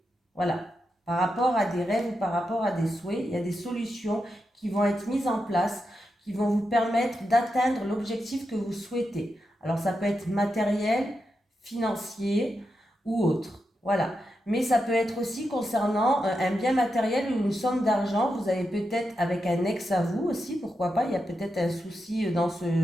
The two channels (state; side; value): normal; both; correlation 0.87